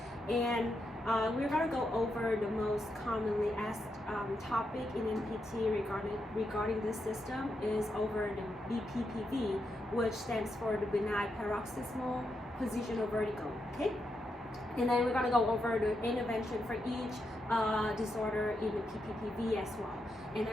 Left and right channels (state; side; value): normal; both; correlation 0.83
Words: and we're going to go over the most commonly asked topic in NPT regarding this system is over the BPPV, which stands for the benign paroxysmal positional vertigo. Okay, and then we're going to go over the intervention for each disorder in the PPPV as well. And